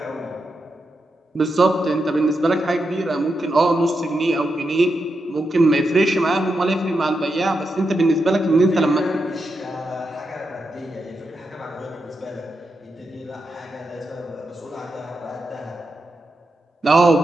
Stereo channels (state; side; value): normal; both; correlation 0.86